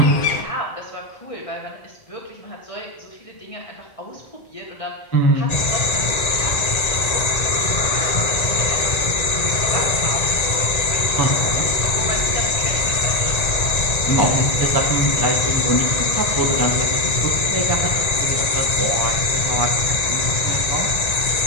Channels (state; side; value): late; right; 1.9 ms